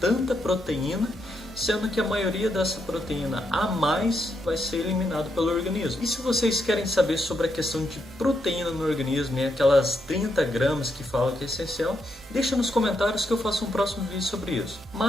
proteína, sendo que a maioria dessa proteína a mais vai ser eliminado pelo organismo. E se vocês querem saber sobre a questão de proteína no organismo e aquelas 30 gramas que falam que é essencial, deixa nos comentários que eu faço um próximo vídeo sobre isso.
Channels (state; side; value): normal; both; correlation 0.80